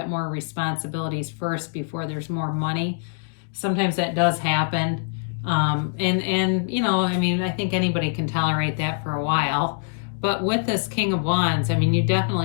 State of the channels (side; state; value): right; silent; digital silence